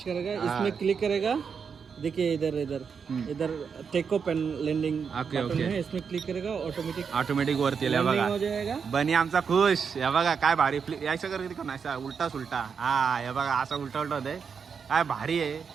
करेगा. हाँ. इसमें क्लिक करेगा. देखिए इधर इधर इधर take off and landing okay, okay. है. इसमें क्लिक करेगा ऑटोमेटिक ऑटोमॅटिक वरती आल्या बघा. हो जाएगा. बनी आमचा खुश. हे बघा काय भारी यायचं कर किती असा उलटा सुलटा. हा हे बघा असा उलटा उलटा होतंय. काय भारी आहे.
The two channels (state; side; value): quieter; left; 6.3 dB